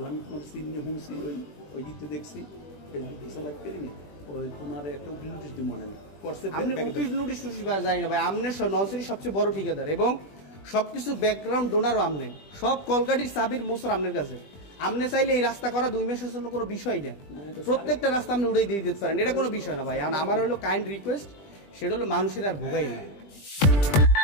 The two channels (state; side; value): late; right; 20 ms